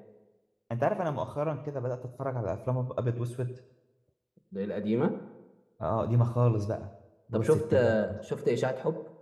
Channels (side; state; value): both; identical; correlation 1.00